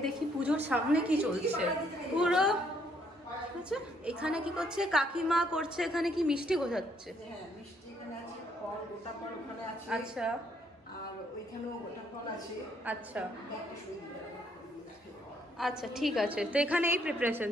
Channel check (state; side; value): normal; both; correlation 0.69